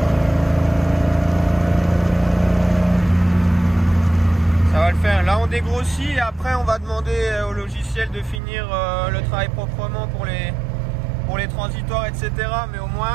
dégrossit et après on va demander au logiciel de finir le travail proprement pour les transitoires, etc. Mais au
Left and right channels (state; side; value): drops out; left; at 8.4 s